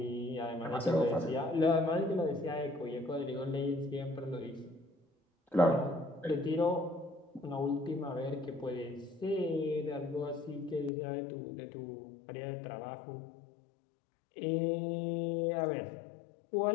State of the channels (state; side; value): drops out; right; at 10.9 s